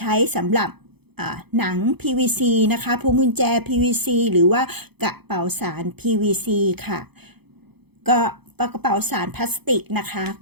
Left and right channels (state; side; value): late; left; 0.98 ms